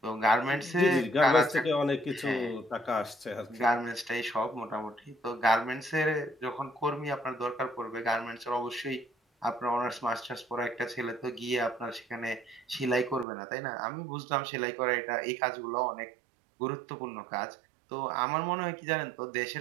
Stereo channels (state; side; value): drops out; left; at 13.2 s